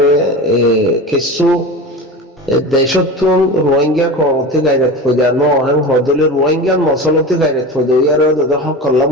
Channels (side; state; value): both; normal; correlation 0.29